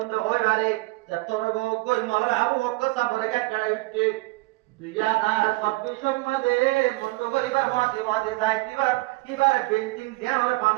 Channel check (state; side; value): quieter; left; 22.7 dB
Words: होय बारे जत्तर गो कोई मलर आबू ओक्का साबरे के कड़े इट्टे 2026 মধ্যে মন্ড গরিবার মতে মতে যাইতিবার কিবার বিল্ডিং ধ্যান আর